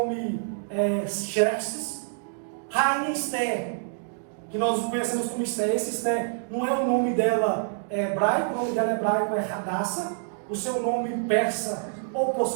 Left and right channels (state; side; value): silent; left; digital silence